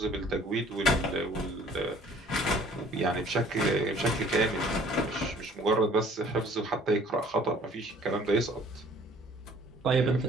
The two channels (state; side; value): normal; both; correlation 0.54